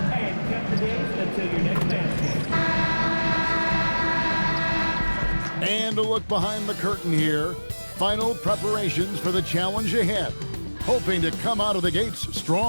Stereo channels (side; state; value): both; inverted; correlation -1.00